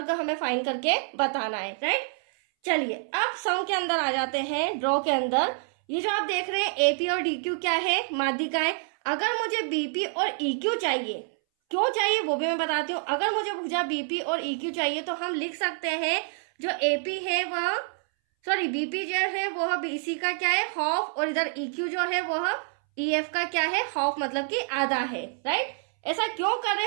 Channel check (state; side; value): silent; left; 60 dB below the other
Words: हमें फाइंड करके बताना है, राइट। चलिए अब सम के अंदर आ जाते हैं, ड्रॉ के अंदर। ये जो आप देख रहे हैं एपी और डीक्यू क्या है, माध्यिकाएं। अगर मुझे बीपी और ईक्यू चाहिए, क्यों चाहिए वो भी मैं बताती हूँ। अगर मुझे भुजा बीपी और ईक्यू चाहिए तो हम लिख सकते हैं जो एपी है वह, सॉरी बीपी जो है वह बीसी का क्या है, हाफ, और इधर ईक्यू जो है वह ईएफ का क्या है, हाफ, मतलब कि आधा है, राइट। ऐसा क्यों कर रहे